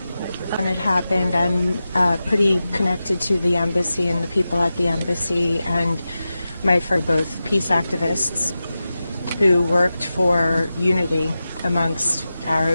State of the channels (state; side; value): inverted; both; correlation -0.93